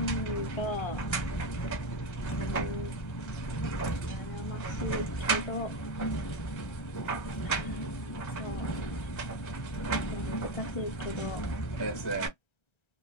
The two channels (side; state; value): right; late; 1.3 ms